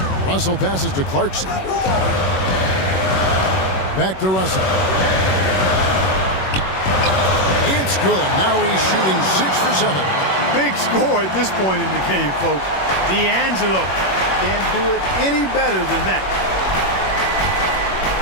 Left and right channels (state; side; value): late; right; 21 ms